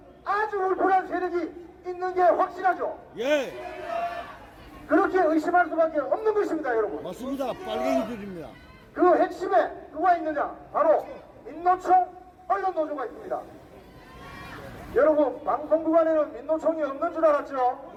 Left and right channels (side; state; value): both; identical; correlation 1.00